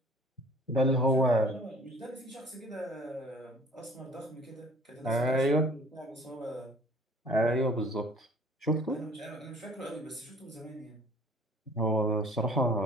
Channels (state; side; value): normal; both; correlation 0.52